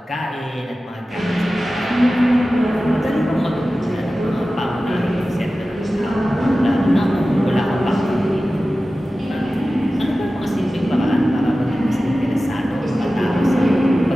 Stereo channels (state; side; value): normal; both; correlation 0.95